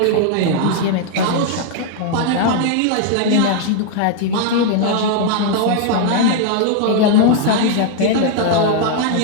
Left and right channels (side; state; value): both; different; correlation 0.00